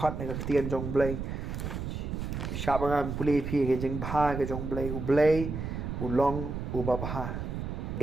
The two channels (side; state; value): right; noise; rumble, 4 dB below the sound